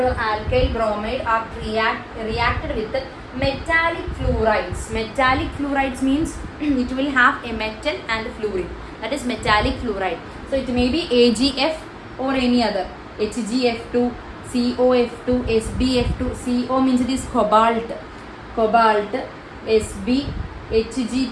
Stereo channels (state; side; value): identical; both; correlation 1.00